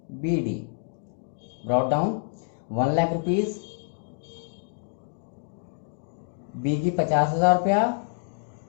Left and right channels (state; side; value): silent; right; digital silence